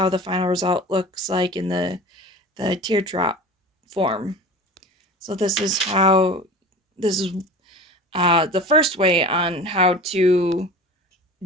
the final result looks like in the teardrop form. So this is the first way on how to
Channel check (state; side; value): normal; both; correlation 0.36